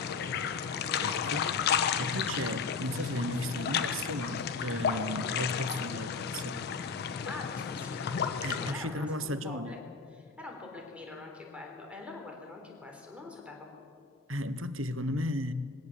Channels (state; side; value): quieter; right; 4.4 dB